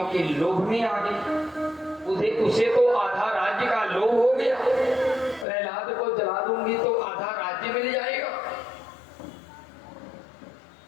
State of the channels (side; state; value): right; drops out; at 5.5 s